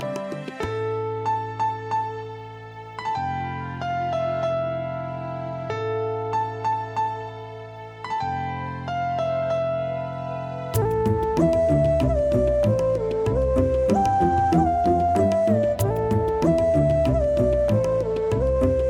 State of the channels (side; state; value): both; identical; correlation 1.00